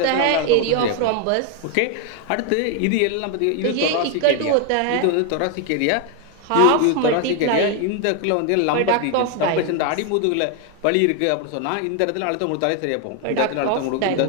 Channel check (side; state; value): both; different; correlation 0.01